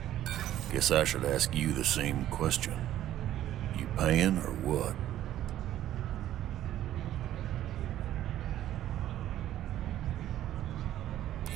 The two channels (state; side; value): quieter; left; 12.7 dB